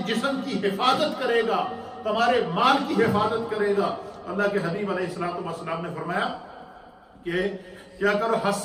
جسم کی حفاظت کرے گا، تمہارے مال کی حفاظت کرے گا۔ اللہ کے حبیب علیہ الصلوۃ والسلام نے فرمایا کہ کیا کرو؟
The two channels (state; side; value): identical; both; correlation 1.00